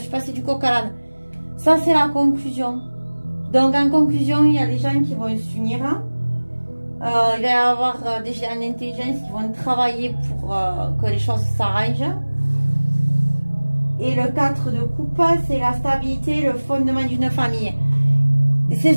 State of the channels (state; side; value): inverted; both; correlation -1.00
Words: du coq à l'âne. Ça, c'est la conclusion. Donc, en conclusion, il y a des gens qui vont s'unir. Hein. Il va y avoir des gens en intelligence qui vont travailler pour que les choses s'arrangent. Et le 4 de coupe, c'est la stabilité, le fondement d'une famille. C'est